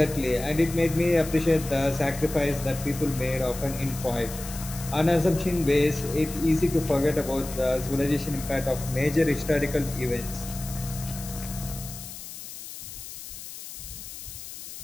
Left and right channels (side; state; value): left; noise; hiss, 12 dB below the sound